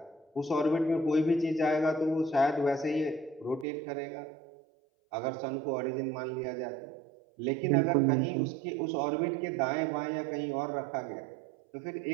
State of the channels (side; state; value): left; drops out; at 3.7 s